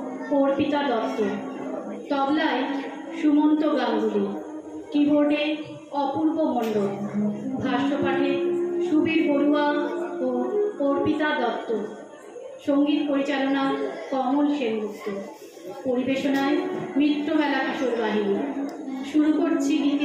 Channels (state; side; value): identical; both; correlation 1.00